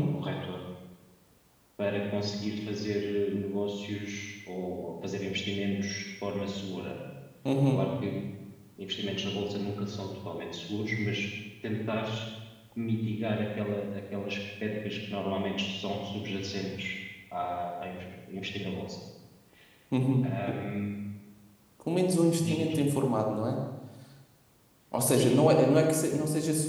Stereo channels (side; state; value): both; identical; correlation 1.00